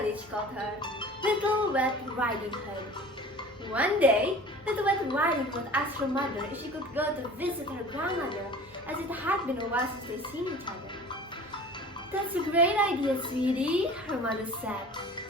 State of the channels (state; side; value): normal; both; correlation 0.42